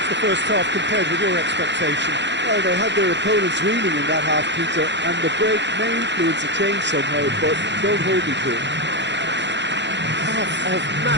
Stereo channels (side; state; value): left; late; 0.52 ms